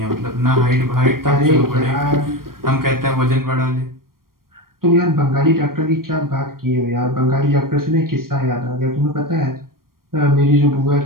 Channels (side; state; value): left; late; 0.92 ms